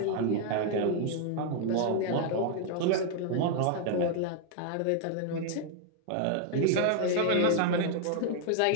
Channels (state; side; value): different; both; correlation 0.00